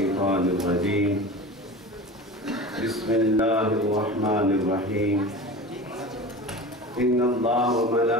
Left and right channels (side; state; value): both; normal; correlation 0.33